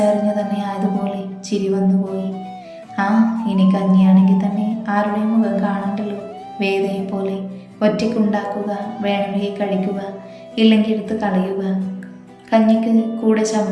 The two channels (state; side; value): identical; both; correlation 1.00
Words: അറിഞ്ഞു തന്നെ ആയതുപോലെ ചിരി വന്നുപോയി. ഇനി കഞ്ഞിയാണെങ്കിൽ തന്നെ ആരുടെയും മുഖം കാണണ്ടല്ലോ. വേദയെ പോലെ ഒറ്റയ്ക്കുണ്ടാക്കുക, വേണമെങ്കിൽ കഴിക്കുക, ഇല്ലെങ്കിൽ എടുത്ത് കളയുക. കഞ്ഞിക്ക് കൂടെ